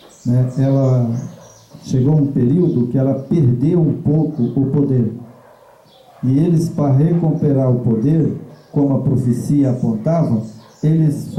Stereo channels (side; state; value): both; identical; correlation 1.00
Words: né, ela chegou um período que ela perdeu um pouco o poder. E eles, para recuperar o poder, como a profecia apontava, eles